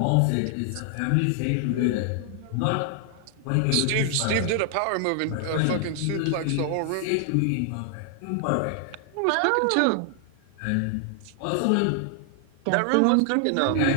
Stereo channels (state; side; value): different; both; correlation 0.00